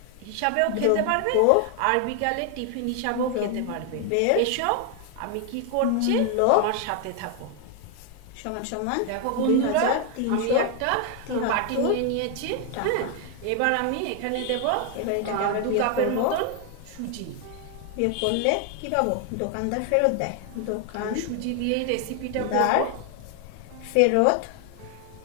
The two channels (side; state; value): both; different; correlation 0.00